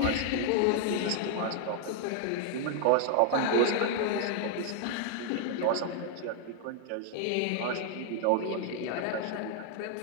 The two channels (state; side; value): different; both; correlation 0.00